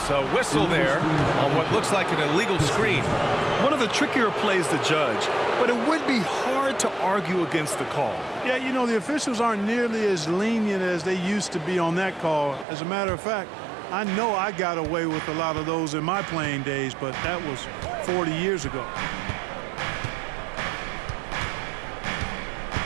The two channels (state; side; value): drops out; left; at 12.7 s